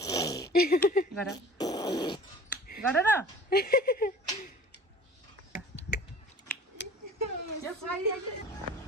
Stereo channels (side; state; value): both; normal; correlation 0.44